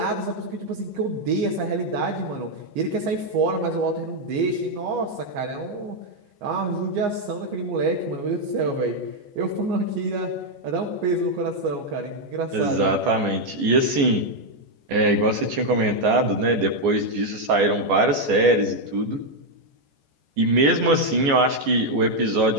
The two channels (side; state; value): left; late; 14 ms